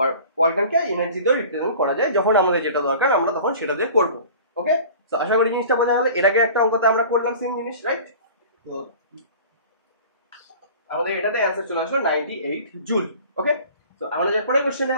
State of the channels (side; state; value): both; inverted; correlation -0.43